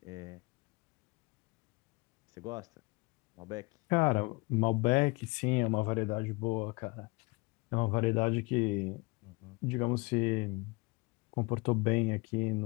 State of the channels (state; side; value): quieter; right; 26.5 dB